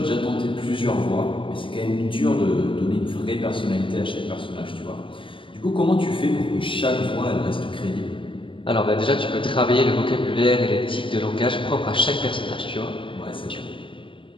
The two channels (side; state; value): right; late; 0.25 ms